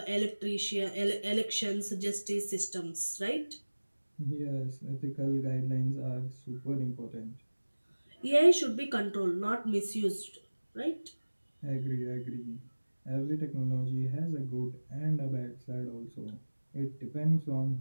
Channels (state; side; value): inverted; both; correlation -1.00